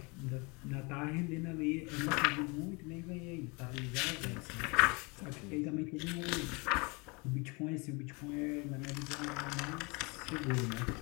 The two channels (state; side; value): quieter; right; 29.0 dB